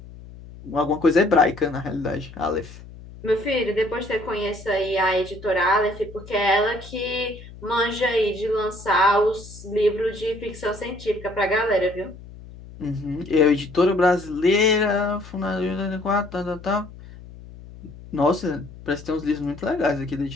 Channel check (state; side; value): noise; left; hum, 17 dB below the sound